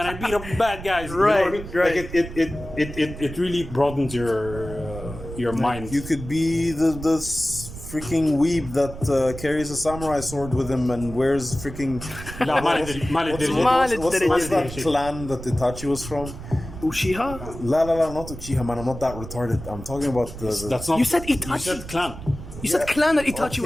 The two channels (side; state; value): right; noise; rumble, 12 dB below the sound